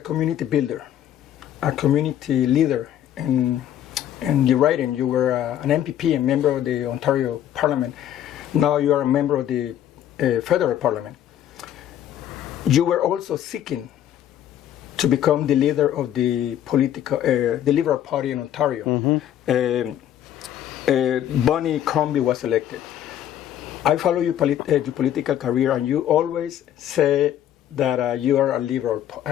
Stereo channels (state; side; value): quieter; right; 11.1 dB